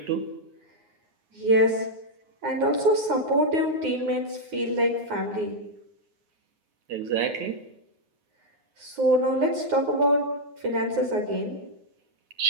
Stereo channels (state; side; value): late; left; 9.6 ms